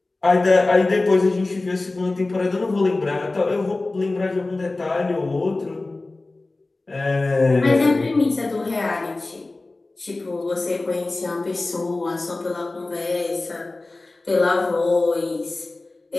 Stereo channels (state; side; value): quieter; right; 3.1 dB